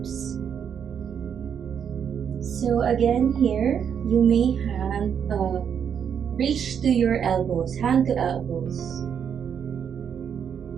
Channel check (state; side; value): quieter; left; 7.9 dB